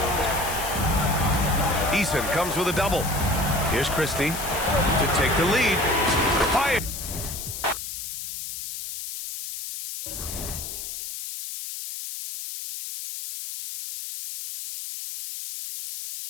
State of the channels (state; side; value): noise; left; hiss, 7 dB below the sound